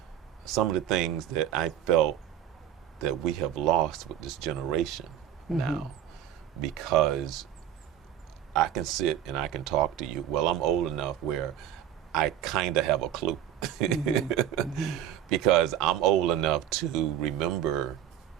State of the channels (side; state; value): left; quieter; 10.7 dB